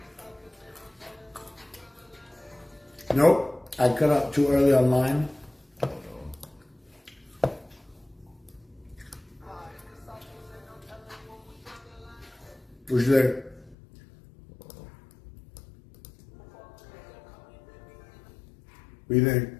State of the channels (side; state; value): right; drops out; at 13.8 s